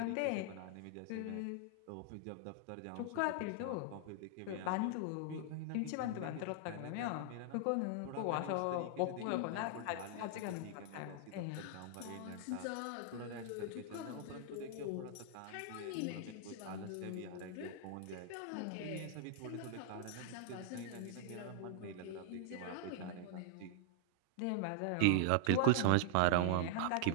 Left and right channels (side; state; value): both; different; correlation -0.01